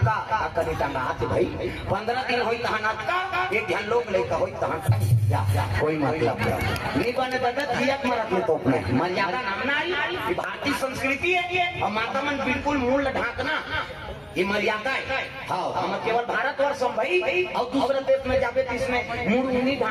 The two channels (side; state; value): both; identical; correlation 1.00